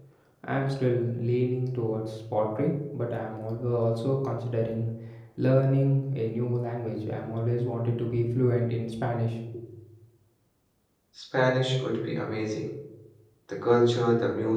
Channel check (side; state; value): both; identical; correlation 1.00